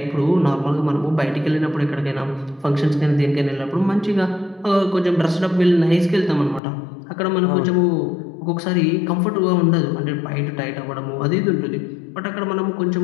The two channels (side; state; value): right; drops out; at 6.6 s